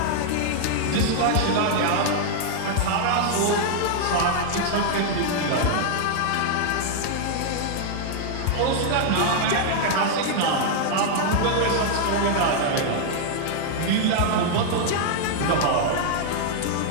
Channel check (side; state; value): both; different; correlation -0.01